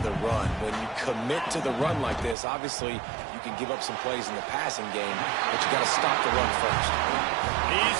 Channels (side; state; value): left; drops out; at 2.4 s